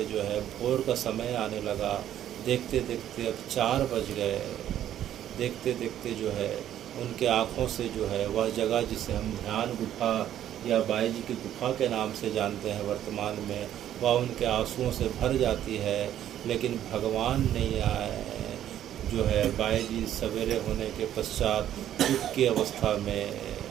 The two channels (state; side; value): quieter; left; 11.3 dB